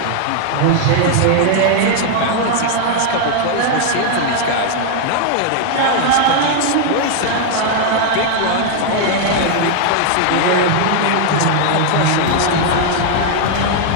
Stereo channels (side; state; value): both; different; correlation 0.00